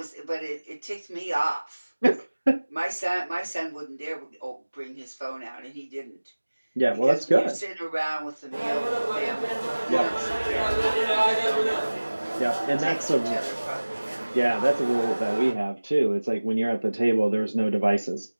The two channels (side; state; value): both; inverted; correlation -1.00